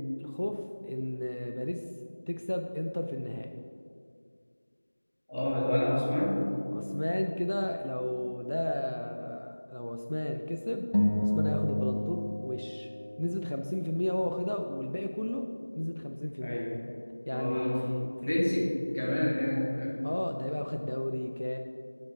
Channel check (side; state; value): both; inverted; correlation -1.00